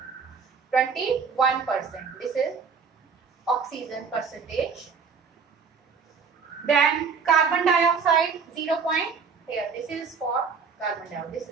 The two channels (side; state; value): left; quieter; 5.7 dB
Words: 21%. This is oxygen percentage. Then carbon dioxide 0. Here this is for carbon dioxide. This